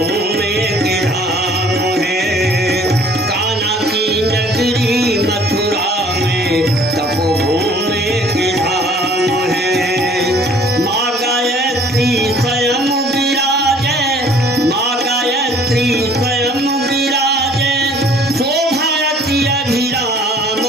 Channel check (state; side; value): normal; both; correlation 0.55